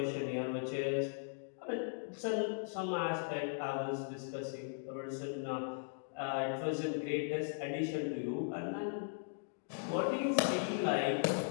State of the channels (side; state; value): right; silent; digital silence